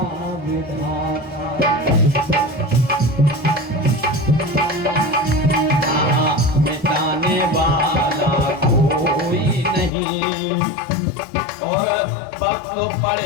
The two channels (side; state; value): right; drops out; at 9.9 s